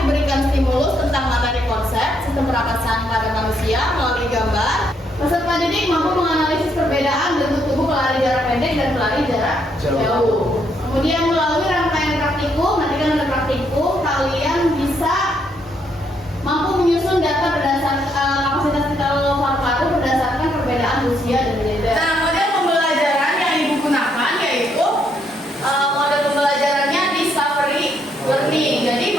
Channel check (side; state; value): both; normal; correlation 0.74